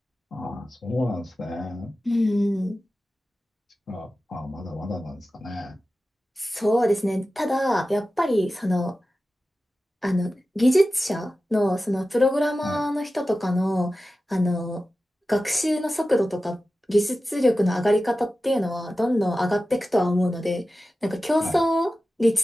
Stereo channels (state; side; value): normal; both; correlation 0.94